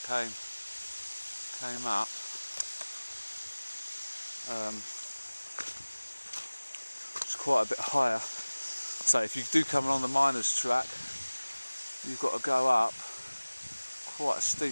up. It's quite a bit higher. So if you do come along the miners' track, you've got to go up quite a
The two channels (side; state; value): both; inverted; correlation -1.00